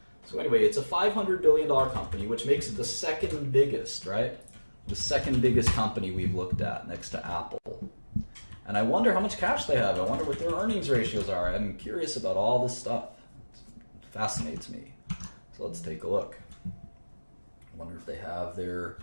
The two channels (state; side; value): inverted; both; correlation -1.00